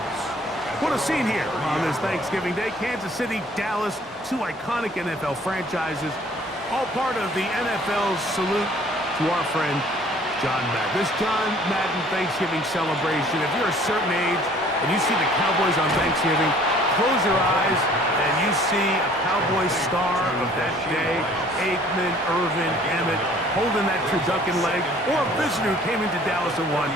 What a scene here on this Thanksgiving Day. Kansas City, Dallas, 2 iconic NFL franchises, all part of the NFL's salute to our friend John Madden. This John Madden Thanksgiving celebration, if you're a certain age and you see the Cowboys on Thanksgiving, close your eyes and you see a Cowboys star of that day, Aikman, Irvin, Emmett, holding that turducken leg, or a visitor who came into Dallas and won,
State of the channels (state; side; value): normal; both; correlation 0.55